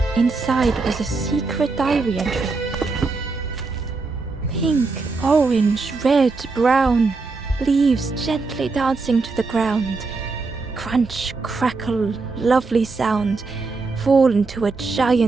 Inside was a secret diary entry. Pink, orange, red, brown, leaves gently dancing to the ground. Crunch, crackle, lovely sound, fall into a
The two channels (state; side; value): quieter; left; 4.0 dB